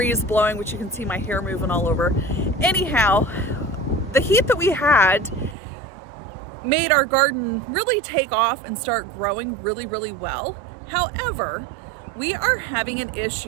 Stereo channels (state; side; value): drops out; left; at 5.6 s